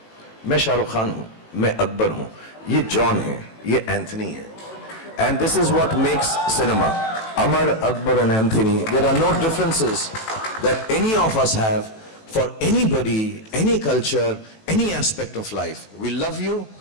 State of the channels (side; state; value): right; late; 18 ms